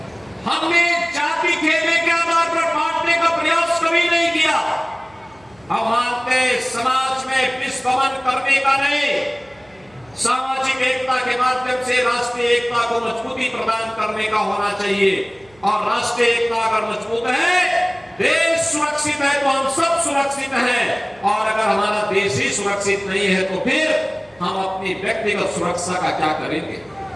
हमने जाति खेमे के आधार पर बांटने का प्रयास कभी नहीं किया। हम मानते समाज में विस्फोट करने का नहीं, सामाजिक एकता के माध्यम से राष्ट्रीय एकता को मजबूती प्रदान करने का होना चाहिए। और राष्ट्रीय एकता अगर मजबूत है, देश सुरक्षित है तो हम सब सुरक्षित हैं। और अगर हमारा देश ही सुरक्षित नहीं है तो फिर हम अपनी व्यक्तिगत सुरक्षा का क्या करेंगे।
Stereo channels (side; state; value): right; noise; hum, 30 dB below the sound